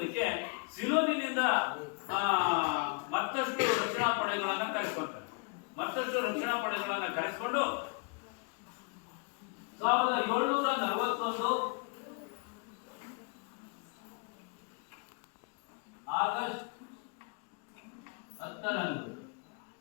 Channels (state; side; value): quieter; right; 37.7 dB